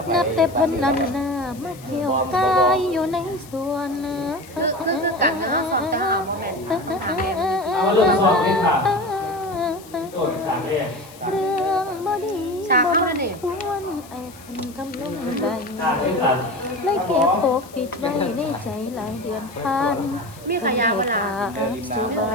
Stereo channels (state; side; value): noise; left; hiss, 21 dB below the sound